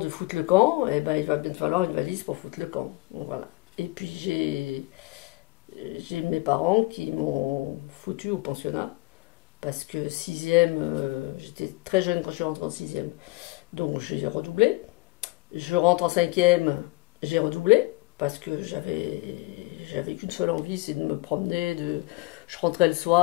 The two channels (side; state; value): right; quieter; 21.4 dB